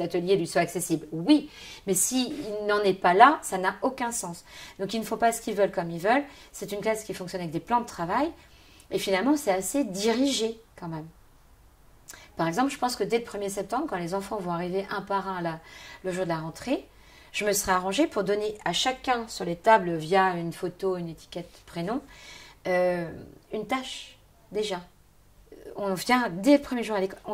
atelier lui soit accessible, oui, mais s'il n'en est pas là, ça n'a aucun sens. Donc ils ne font pas ce qu'ils veulent comme ils veulent. C'est une classe qui fonctionne avec des plans de travail et finalement c'est assez dirigé quand même. Par exemple, je pense que dès le 1er septembre, quand les enfants vont arriver un par un le jour de la rentrée, je me serai arrangée pour donner à chacun sur les tables via une photo, une étiquette, prénom, une tâche déjà. On vient dès le premier jour à l'école,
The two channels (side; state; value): both; identical; correlation 1.00